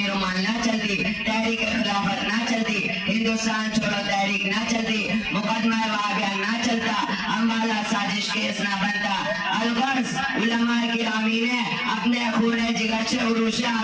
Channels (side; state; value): both; identical; correlation 1.00